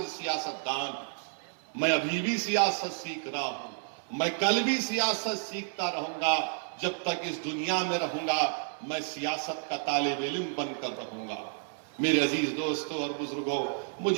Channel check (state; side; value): silent; left; 57 dB below the other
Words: سیاستدان ہوں، میں ابھی بھی سیاست سیکھ رہا ہوں، میں کل بھی سیاست سیکھتا رہوں گا، جب تک اس دنیا میں رہوں گا میں سیاست کا طالب علم بن کر رہوں گا۔ میرے عزیز دوستوں اور بزرگوں،